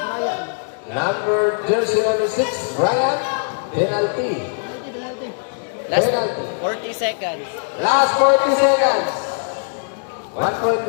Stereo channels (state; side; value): silent; right; digital silence